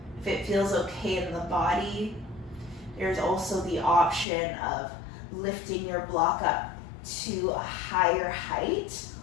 If it feels okay in the body, there's also the option of lifting your block up to a higher height,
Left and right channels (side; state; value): right; drops out; at 4.2 s